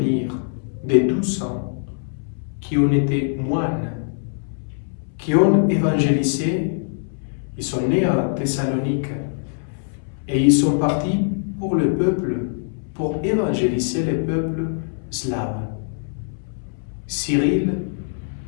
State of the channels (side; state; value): right; silent; 64 dB below the other